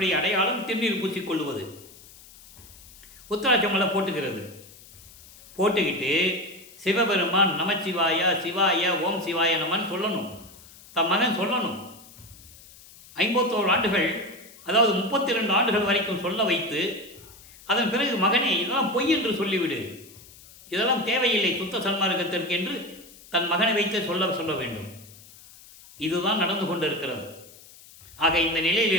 அடையாளம் திருநீர் பூசிக்கொள்வது. உத்தராட்சமலை போட்டுக்கிறது. போட்டுக்கிட்டு சிவபெருமான் நமச்சிவாய சிவாய ஓம் சிவாய நமன் சொல்லணும். தன் மகன் சொல்லணும். 51 ஆண்டுகள், அதாவது 32 ஆண்டுகள் வரைக்கும் சொல்ல வைத்து அதன் பிறகு மகனே இதெல்லாம் பொய் என்று சொல்லிவிடு, இதெல்லாம் தேவையில்லை சுத்த சன்மார்க்கத்திற்கு என்று தன் மகனை வைத்து சொல்ல வேண்டும். இதுதான் நடந்து கொண்டிருக்கிறது. ஆக இந்த நிலையில்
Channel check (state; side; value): noise; left; hiss, 21 dB below the sound